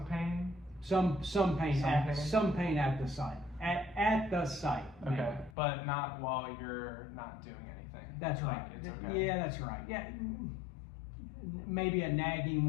pain? Some pain Some at pain? some pain at the site. At the site. Okay. mainly. But not while you're not doing anything? That's Like, right. It's okay? Yeah, that's right. Yeah, maybe a nagging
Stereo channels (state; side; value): drops out; right; at 5.6 s